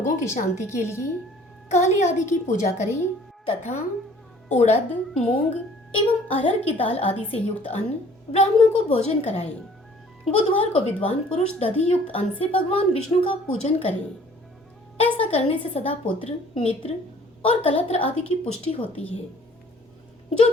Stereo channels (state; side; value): normal; both; correlation 0.54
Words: की शांति के लिए काली आदि की पूजा करें तथा उड़द, मूंग एवं अरहर की दाल आदि से युक्त अन्न ब्राह्मणों को भोजन कराएं। बुधवार को विद्वान पुरुष दधि युक्त अन्न से भगवान विष्णु का पूजन करें। ऐसा करने से सदा पुत्र, मित्र और कलत्र आदि की पुष्टि होती है। जो